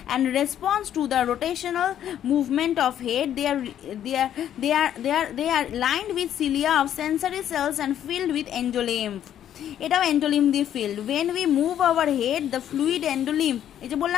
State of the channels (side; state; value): right; quieter; 10.5 dB